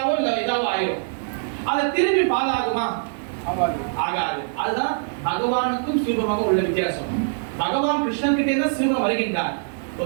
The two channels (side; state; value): left; silent; 63 dB below the other